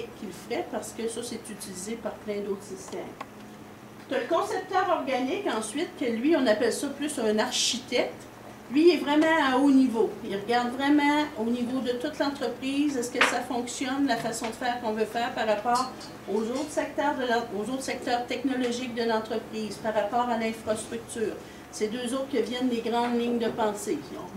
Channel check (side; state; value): both; identical; correlation 1.00